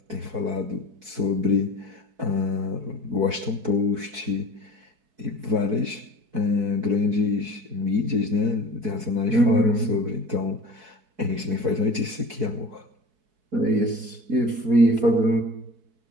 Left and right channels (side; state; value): left; late; 4.6 ms